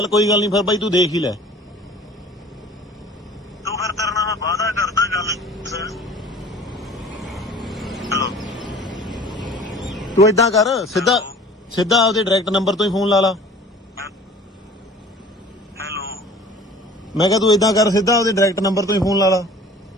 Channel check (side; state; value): both; normal; correlation 0.46